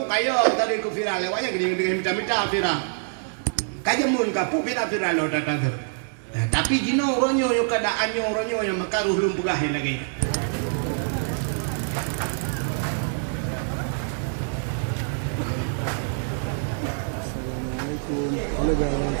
kayo tadi ku viral lewatnya gini minta viral. Kajamun ka pu viral lo tata. Nah, tapi gino ronyo yo keadaannya ronyo yang makaruh belum pegahin lagi. Assalamualaikum. Halo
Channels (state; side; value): silent; left; digital silence